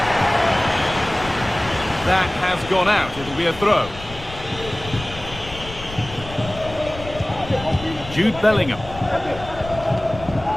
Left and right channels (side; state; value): left; noise; rumble, 14 dB below the sound